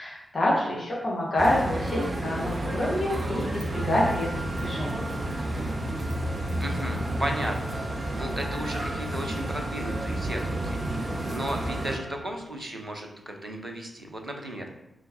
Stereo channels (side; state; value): both; normal; correlation 0.88